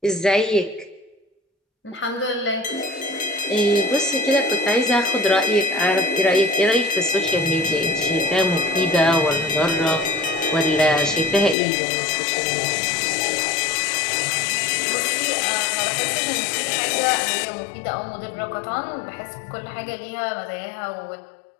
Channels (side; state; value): right; drops out; at 11.6 s